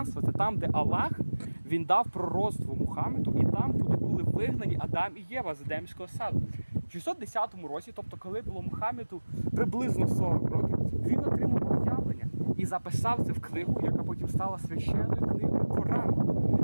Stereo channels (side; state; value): both; inverted; correlation -1.00